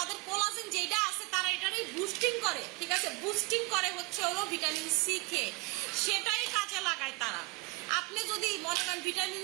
কোলাজেন যেটা আছে তারা এটারই বুস্টিং করে, ঠিক আছে? বুস্টিং করে হচ্ছে হলো ভিটামিন সি খেয়ে, সেটাই কাজে লাগায় তারা। আপনি যদি মনে করেন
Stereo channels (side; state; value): left; quieter; 26.1 dB